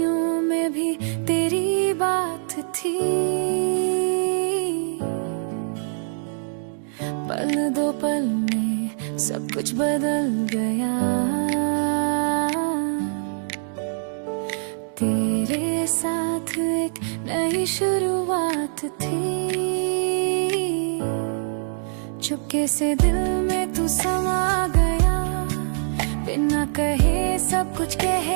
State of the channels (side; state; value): left; silent; digital silence